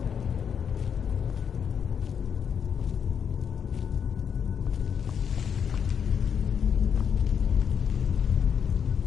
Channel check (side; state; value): right; quieter; 7.5 dB